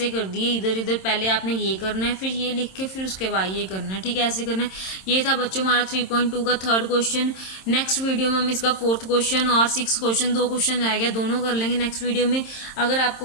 कर दिए, इधर इधर पहले आपने ये करना है, फिर ये लिख के फिर उसके बाद ये करना है। ठीक है, ऐसे करना है। ये था बच्चों हमारा 3.2 का थर्ड क्वेश्चन। नेक्स्ट वीडियो में हम इसका फोर्थ क्वेश्चन और 6 क्वेश्चन, 2 क्वेश्चन रह गया, दोनों कर लेंगे नेक्स्ट वीडियो में। अगर आपको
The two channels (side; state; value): right; late; 27 ms